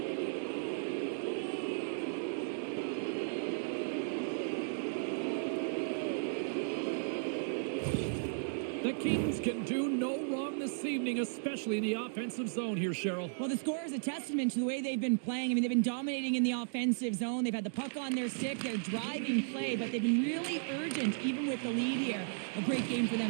The Kings can do no wrong this evening, especially in the offensive zone here, Cheryl. Well, the score is a testament to the way they've been playing. I mean, they've been dominating in the offensive zone. They've had the puck on their stick. They're driving play, but they've been really urgent, even with the lead here. A great game for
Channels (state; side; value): silent; left; digital silence